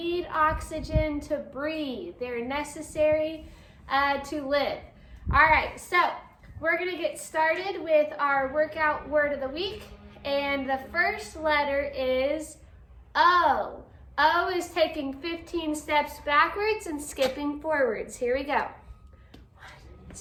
oxygen to breathe. They're necessary to live. All right, so we're gonna get started with our workout word of the week. And the first letter is O. O is taking 15 steps backwards and skipping forwards. Here we go. 1,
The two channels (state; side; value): identical; both; correlation 1.00